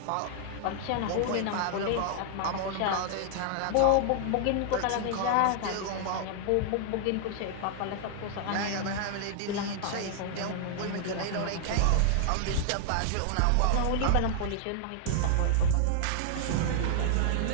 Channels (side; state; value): both; different; correlation -0.01